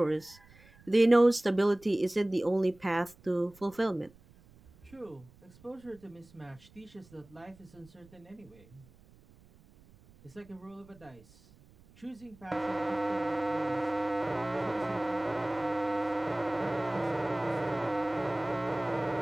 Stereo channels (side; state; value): right; noise; rumble, 26 dB below the sound